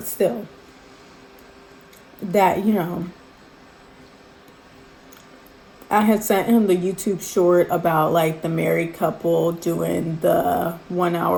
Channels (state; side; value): identical; both; correlation 1.00